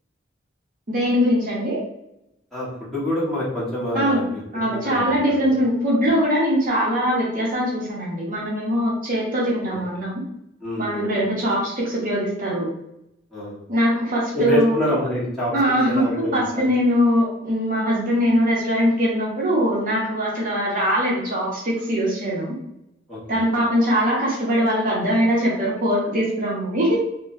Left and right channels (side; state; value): both; normal; correlation 0.43